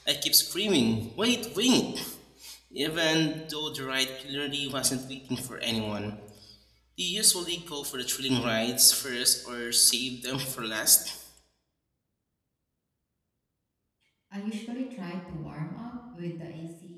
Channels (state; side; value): identical; both; correlation 1.00